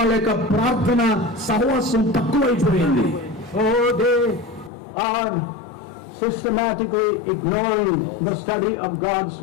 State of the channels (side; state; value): right; drops out; at 4.7 s